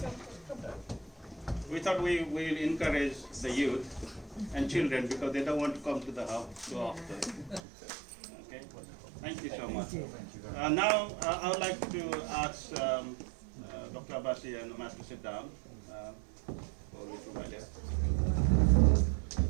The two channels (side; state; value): left; drops out; at 7.6 s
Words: We thought we will encourage the youth and children because they don't want to come to the house too often. Okay, thank you so much. Now I would like to ask Dr. Abasi and Mas to sit down.